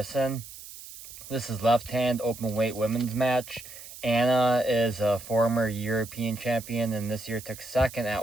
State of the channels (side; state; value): right; noise; hiss, 15 dB below the sound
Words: This is left-hand open weight women's match. Anna is a former European champion and this year took second at